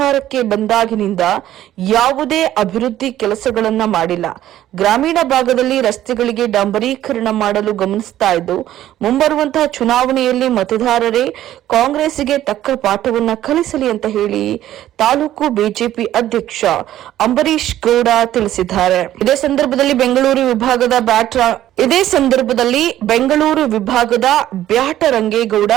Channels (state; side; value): quieter; left; 12.9 dB